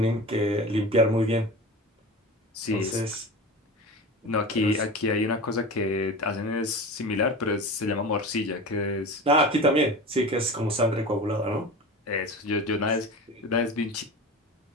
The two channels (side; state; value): both; normal; correlation 0.31